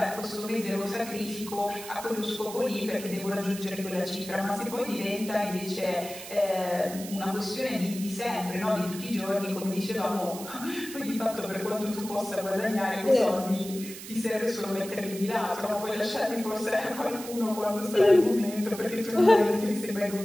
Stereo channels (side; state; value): right; noise; hiss, 12 dB below the sound